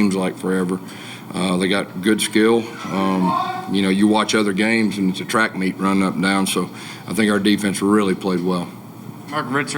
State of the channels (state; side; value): identical; both; correlation 1.00